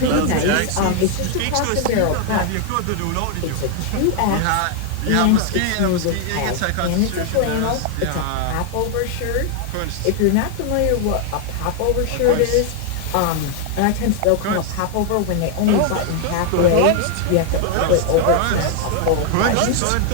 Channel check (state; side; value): different; both; correlation 0.00